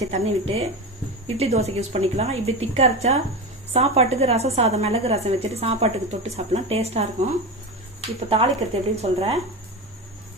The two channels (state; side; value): normal; both; correlation 0.22